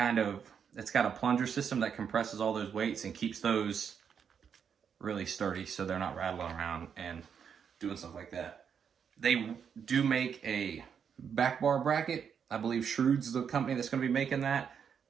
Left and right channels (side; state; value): left; quieter; 7.3 dB